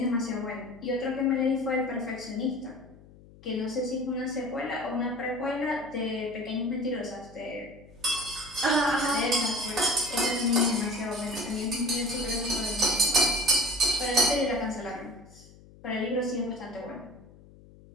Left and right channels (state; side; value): noise; left; hum, 22 dB below the sound